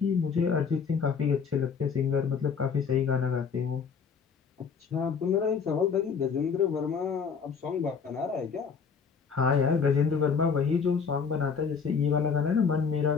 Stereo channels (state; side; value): quieter; right; 6.0 dB